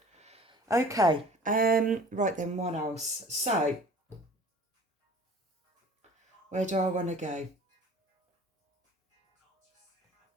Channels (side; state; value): both; normal; correlation 0.46